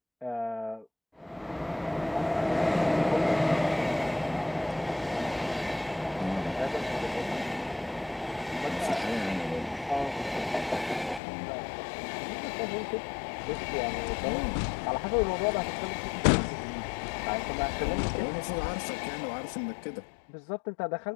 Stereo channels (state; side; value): drops out; right; at 11.2 s